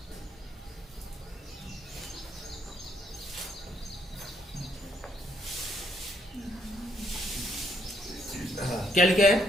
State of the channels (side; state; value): both; normal; correlation 0.72